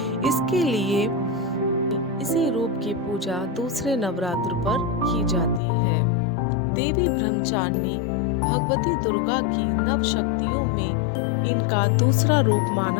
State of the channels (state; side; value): drops out; right; at 5.6 s